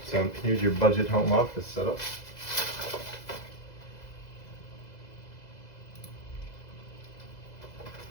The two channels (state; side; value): late; right; 2.0 ms